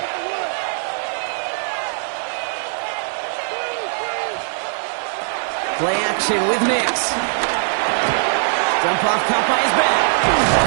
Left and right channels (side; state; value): left; silent; digital silence